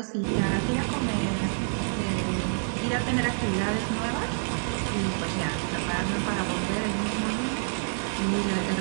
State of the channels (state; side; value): silent; left; digital silence